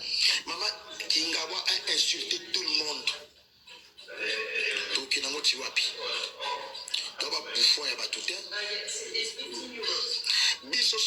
Maman Kingawa a insulté tout le monde. Donc il n'a pas tiwapi. Doba bouffon ya batuté. Biso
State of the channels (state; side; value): identical; both; correlation 1.00